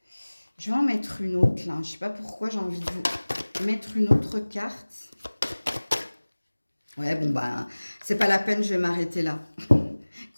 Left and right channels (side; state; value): both; inverted; correlation -1.00